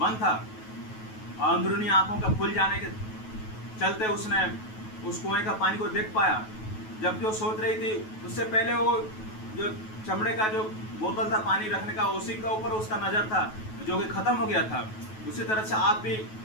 था। और अंदरूनी आंखों का खुल जाने के चलते उसने उस कुएं का पानी को देख पाया। जबकि वो सोच रही थी, उससे पहले वो जो चमड़े का जो बोतल था पानी रखने का, उसी के ऊपर उसका नज़र था, जो कि ख़त्म हो गया था। उसी तरह से आप भी,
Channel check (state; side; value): late; right; 9.3 ms